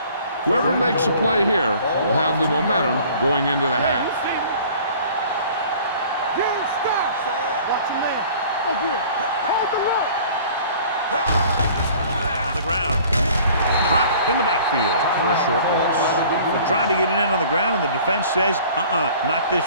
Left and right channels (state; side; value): inverted; both; correlation -0.50